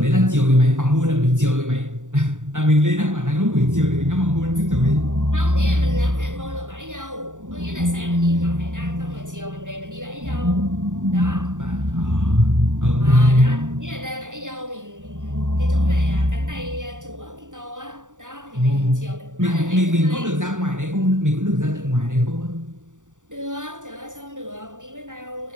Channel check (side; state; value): left; late; 0.86 ms